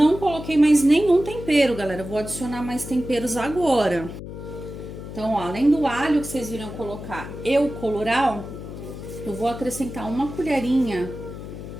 coloquei mais nenhum tempero, galera. Vou adicionar mais temperos agora. Então, ó, além do alho que vocês viram colocar e o colorau, eu vou acrescentar uma colherinha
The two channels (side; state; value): left; noise; hum, 10 dB below the sound